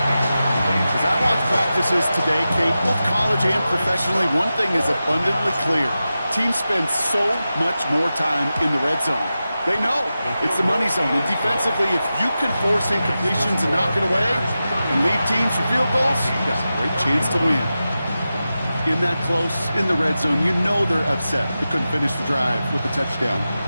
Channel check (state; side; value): inverted; both; correlation -0.93